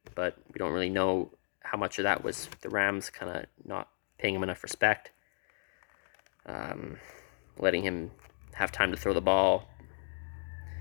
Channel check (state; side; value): silent; right; digital silence